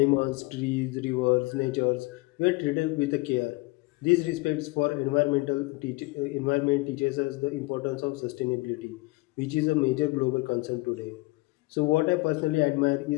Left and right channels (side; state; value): right; quieter; 24.1 dB